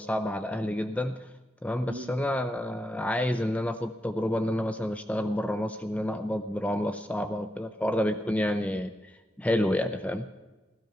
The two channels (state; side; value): normal; both; correlation 0.85